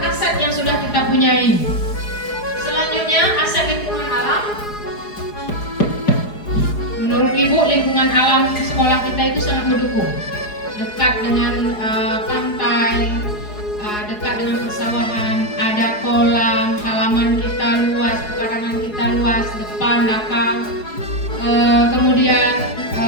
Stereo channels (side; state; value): right; late; 4.8 ms